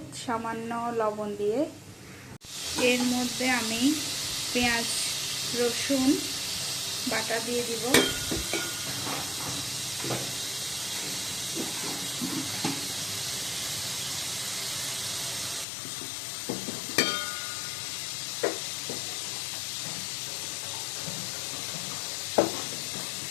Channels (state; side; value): drops out; right; at 15.7 s